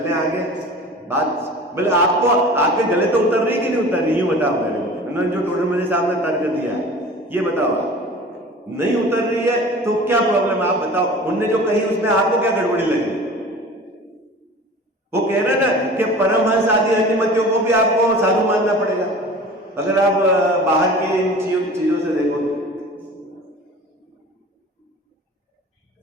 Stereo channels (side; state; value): both; normal; correlation 0.40